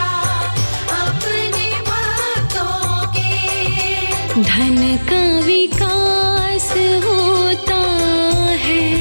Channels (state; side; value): inverted; both; correlation -1.00